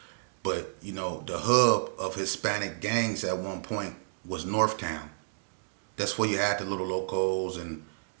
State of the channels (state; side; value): silent; left; digital silence